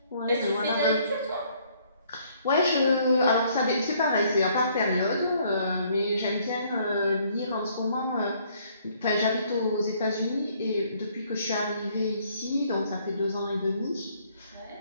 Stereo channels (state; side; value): inverted; both; correlation -0.64